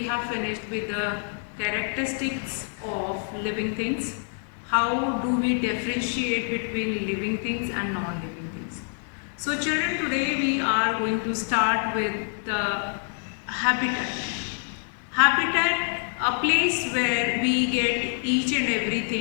have finished with the characteristics of living things. How do we differentiate between living things and non-living things? So children, today we are going to start with the habitat. Habitat, a place where we get each and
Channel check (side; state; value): right; silent; 58 dB below the other